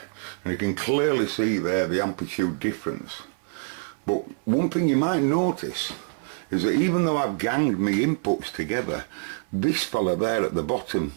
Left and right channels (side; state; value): left; silent; 56 dB below the other